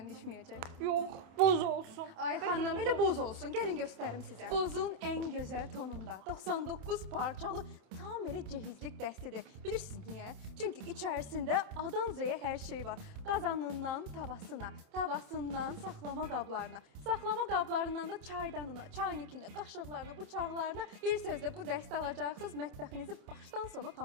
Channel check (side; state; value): left; late; 28 ms